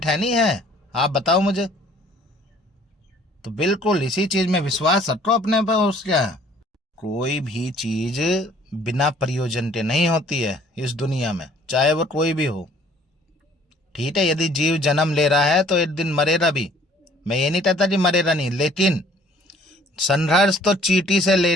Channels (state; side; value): normal; both; correlation 0.56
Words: है नहीं है? आप बताओ मुझे। तो बिल्कुल इसी चीज़ में विश्वास रखो अपने पर। उसका कोई भी चीज़ बिना प्रयोजन के नहीं होती है इस दुनिया में, चाहे वो कोई भी हो। ठीक है, यदि जीव जन्म ले रहा है तो एक दिन मरेगा भी। मैं ये नहीं कहता कि मरेगा नहीं, लेकिन संघर्ष तो चींटी से